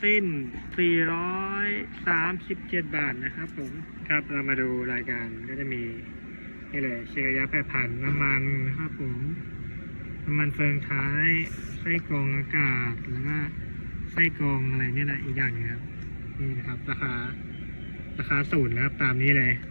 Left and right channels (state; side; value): inverted; both; correlation -1.00